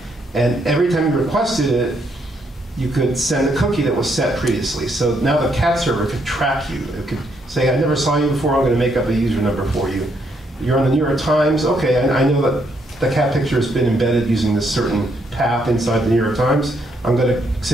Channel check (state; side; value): normal; both; correlation 0.74